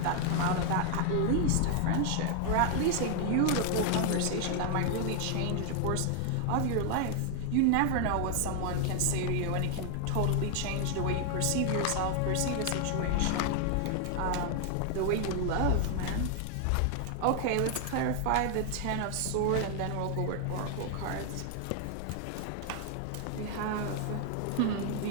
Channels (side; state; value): both; different; correlation 0.00